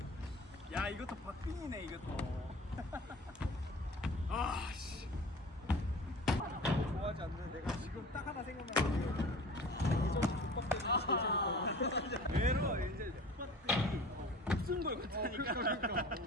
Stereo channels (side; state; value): both; normal; correlation 0.41